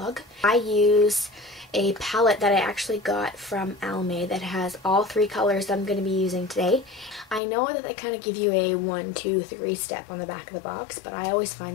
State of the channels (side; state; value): right; drops out; at 7.4 s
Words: I use a palette that I actually got from Almay that has all three colors that I'm going to be using today. I know that they kind of give you a 1, 2, 3 step on the back of the box, but I always